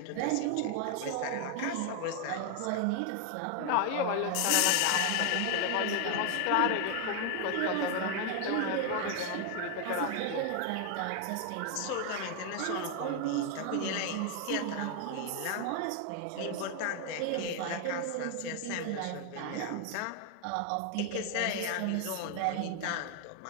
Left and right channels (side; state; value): both; different; correlation 0.01